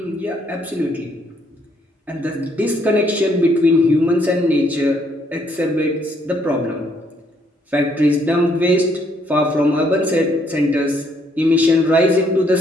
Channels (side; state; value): both; normal; correlation 0.69